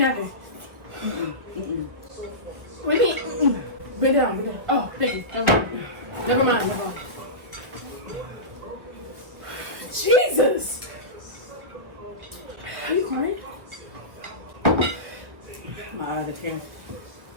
What do you mean? Bring it down. Bring it down. Oh, thank you. Never mind. Never mind. Jesus! Are you crying? My eyes are tearing.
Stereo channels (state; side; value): late; left; 1.2 ms